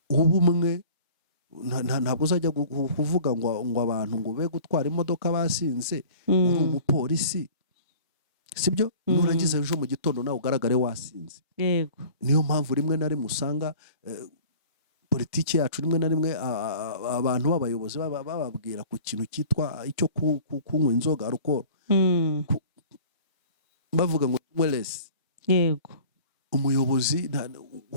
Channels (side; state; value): both; inverted; correlation -0.46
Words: ubumwe, ntabwo uzajya kuvuga ngo abantu ngo be gutwara imodoka basinze, uri umupolisi, sibyo? Nurangiza ejo mu gitondo nawe ugaragare wasinze. Yego. Niyo mpamvu rimwe na rimwe usanga politiki yacu rimwe na rimwe abantu b'abayobozi bababwira ku kintu cyitwa icyo kunywa inzoga, alcohol, bavuga ngo wellness. Yego. Umuyobozi